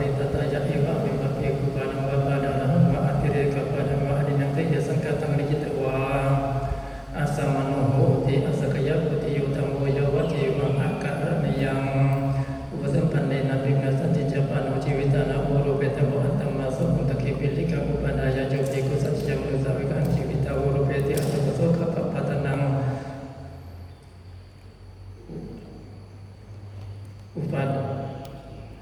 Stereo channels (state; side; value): identical; both; correlation 1.00